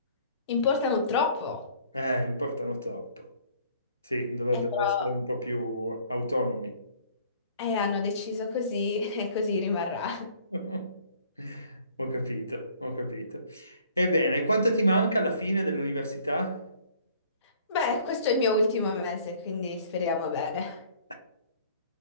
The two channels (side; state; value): both; inverted; correlation -0.57